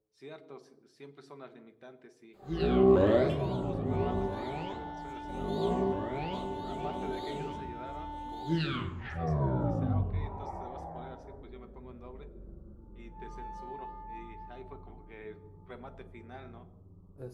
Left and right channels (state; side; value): identical; both; correlation 1.00